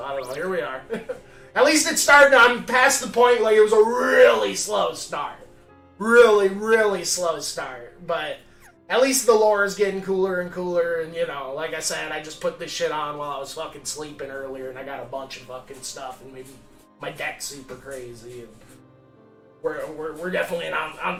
I don't know, here we are. At least it started, I'm past the point, like, it was a really slow start. Really, really slow start, but at least the lore is getting cooler and cooler, and, you know, like I said, I just put this shit on while I was fucking sleeping earlier, and I got a bunch of fucking stuff, and my deck's super crazy, and we're definitely on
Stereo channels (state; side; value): identical; both; correlation 1.00